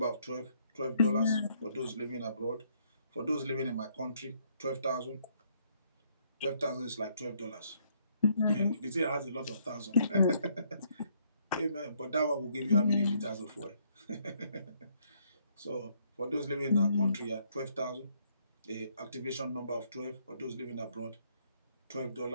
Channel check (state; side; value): inverted; both; correlation -0.70